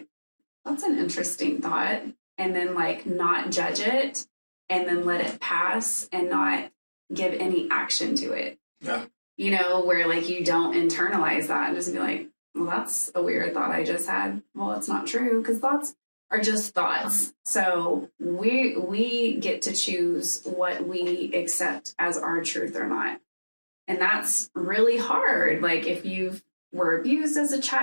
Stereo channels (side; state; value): both; inverted; correlation -1.00